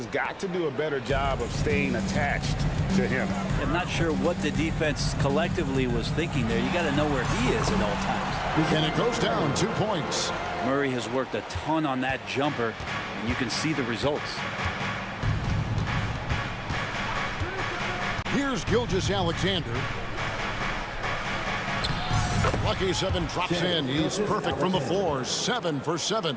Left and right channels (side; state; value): both; identical; correlation 1.00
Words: got to do a better job of staying attached to him. I'm not sure what the defense collectively was thinking there. You got to know where he is at all times. And it goes down 2 points. Murray has worked a ton on that jumper, and you can see the results. Here's Gilgeous-Alexander. Lucky 7 drops in. He's perfect from the floor. 7 for 7.